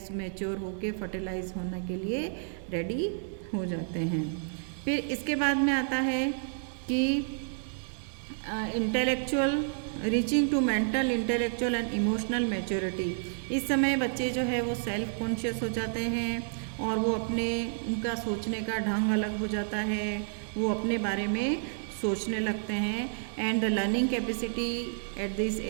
मैच्योर होके फर्टिलाइज होने के लिए रेडी हो जाते हैं। फिर इसके बाद में आता है कि intellectual reaching to mental, intellectual and emotional maturity. इस समय बच्चे जो है वो सेल्फ कॉन्शियस हो जाते हैं, और वो अपने उनका सोचने का ढंग अलग हो जाता है, वो अपने बारे में सोचने लगते हैं। And the learning capacity at this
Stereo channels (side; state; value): left; silent; 58 dB below the other